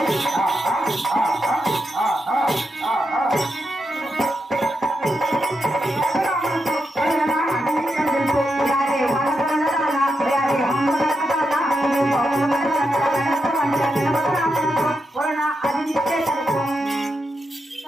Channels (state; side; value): normal; both; correlation 0.85